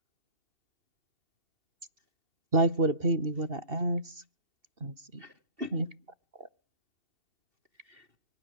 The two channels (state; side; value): late; left; 2.7 ms